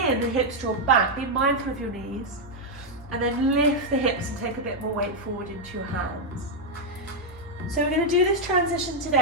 in, the hips draw back. Be mindful of your knees. And then lift the hips and take a bit more weight forward into your hands. So we're going to do this transition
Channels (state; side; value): noise; right; hum, 19 dB below the sound